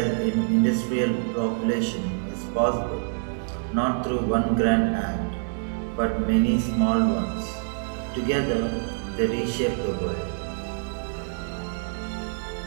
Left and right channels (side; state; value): left; silent; 61 dB below the other